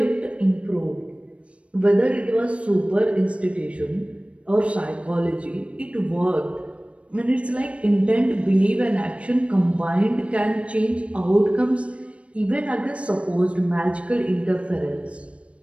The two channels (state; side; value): late; left; 0.062 ms